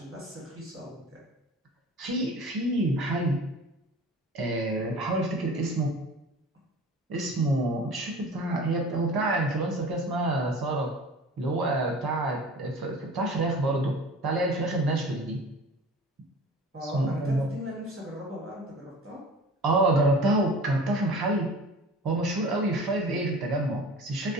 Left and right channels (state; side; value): normal; both; correlation 0.40